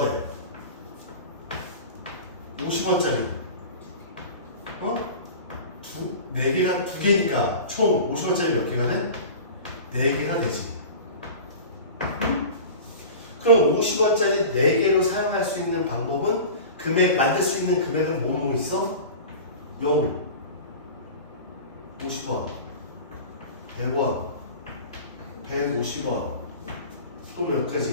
돼? 50원짜리. 네 개가 두 개니까 총 50원짜리 몇 개가 돼? 4개가 되지. 그럼 50원짜리 4개로 사용할 수 있는 방법은 만들 수 있는 금액은 뭐 있어? 0, 50원, 100원, 150원, 또 몇 가지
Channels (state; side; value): inverted; both; correlation -0.35